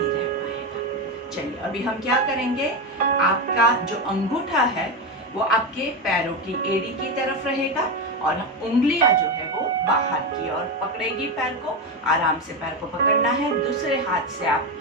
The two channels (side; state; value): both; normal; correlation 0.14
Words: पाएगा। चलिए अभी हम क्या करेंगे, आपका जो अंगूठा है वो आपके पैरों की एड़ी की तरफ रहेगा और उंगलियां जो है वो बाहर की ओर पकड़ेगी पैर को। आराम से पैर को पकड़ना है, दूसरे हाथ से आप